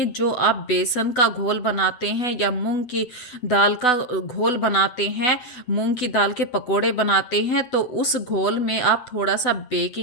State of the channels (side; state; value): right; late; 8.1 ms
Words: जो आप बेसन का घोल बनाते हैं या मूंग की दाल का घोल बनाते हैं, मूंग की दाल के पकोड़े बनाते हैं, तो उस घोल में आप थोड़ा सा